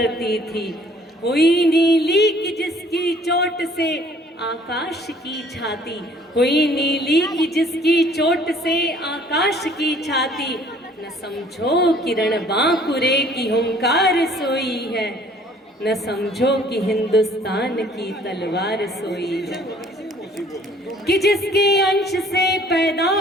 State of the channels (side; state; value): both; normal; correlation 0.56